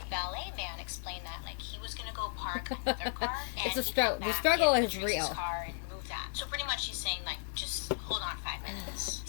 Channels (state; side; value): silent; right; digital silence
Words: Valet man explained that he was gonna go park another car. It's a struggle. The struggle is real. Car and move that. So pretty much she's saying just hold on 5 minutes.